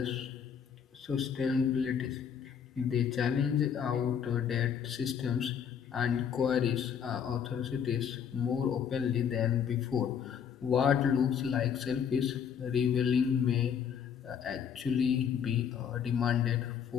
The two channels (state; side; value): quieter; right; 7.8 dB